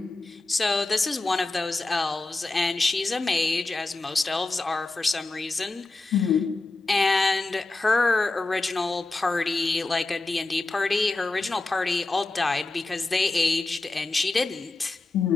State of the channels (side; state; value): right; quieter; 3.3 dB